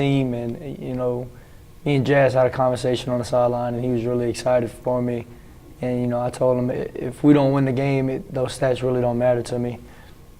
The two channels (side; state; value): both; identical; correlation 1.00